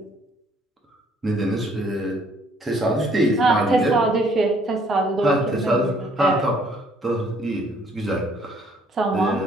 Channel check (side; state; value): both; normal; correlation 0.63